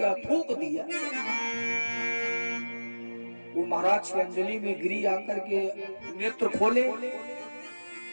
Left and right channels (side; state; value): both; inverted; correlation -1.00